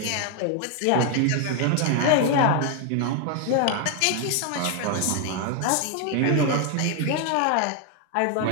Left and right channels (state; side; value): different; both; correlation 0.00